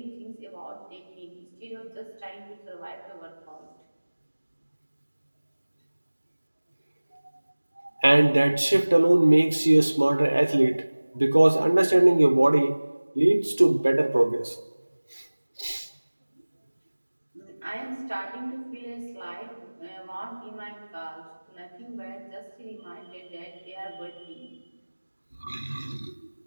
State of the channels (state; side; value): inverted; both; correlation -1.00